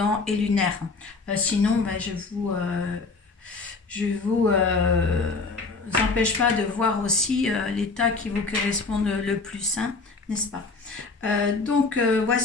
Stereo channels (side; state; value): right; quieter; 4.0 dB